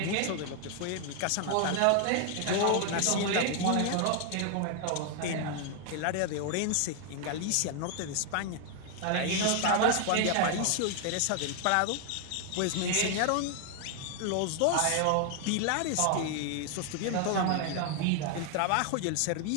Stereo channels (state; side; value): different; both; correlation 0.00